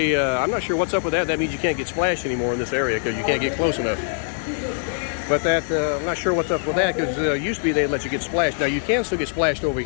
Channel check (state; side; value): silent; right; 62 dB below the other